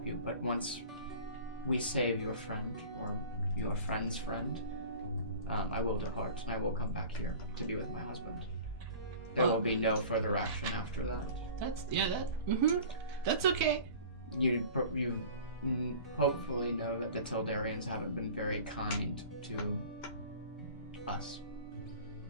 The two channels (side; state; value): both; inverted; correlation -0.41